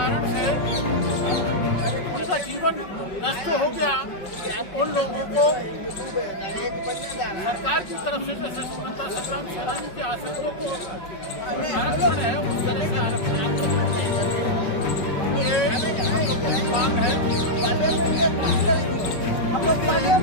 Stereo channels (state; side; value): late; right; 5.4 ms